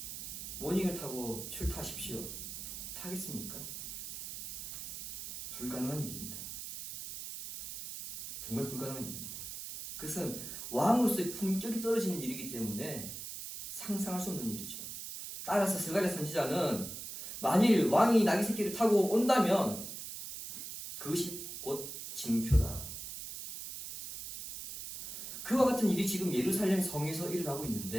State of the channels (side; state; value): right; noise; hiss, 8 dB below the sound